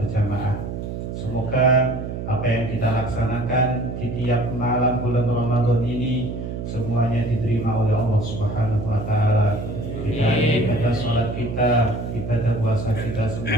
Semoga apa yang kita laksanakan di tiap malam bulan Ramadan ini semuanya diterima oleh Allah Subhanahu wa taala. Ibadah sholat kita, ibadah puasa kita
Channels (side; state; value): right; noise; hum, 6 dB below the sound